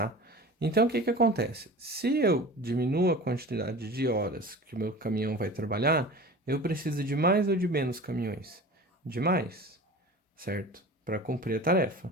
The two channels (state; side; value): normal; both; correlation 0.37